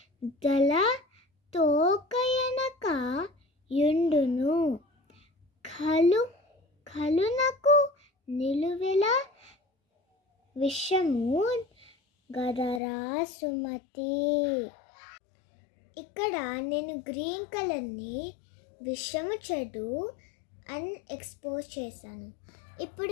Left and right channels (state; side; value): drops out; right; at 12.8 s